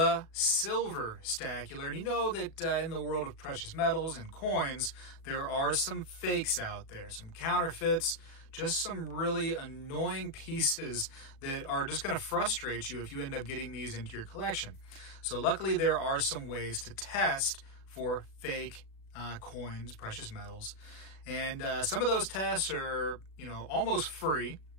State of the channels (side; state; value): right; late; 37 ms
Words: Silver Stacular, and you know that in the world of precious metals and coins, there are some fakes out there, some counterfeits, just some really annoying pieces that are just going to frustrate you if you end up getting these into your collection. So luckily there are some ways to test for fake coins, precious metals, and some of those tests are, almost free.